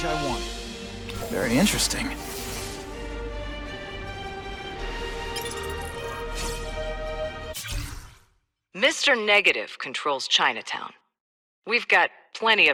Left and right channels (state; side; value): identical; both; correlation 1.00